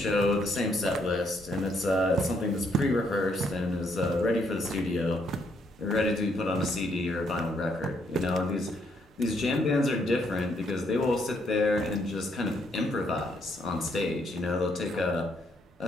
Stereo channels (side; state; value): both; normal; correlation 0.72